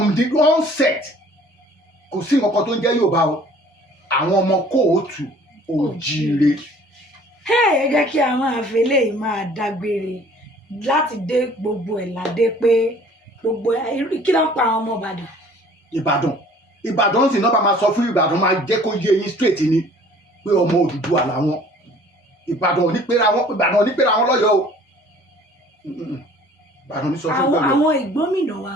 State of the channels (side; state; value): both; normal; correlation 0.52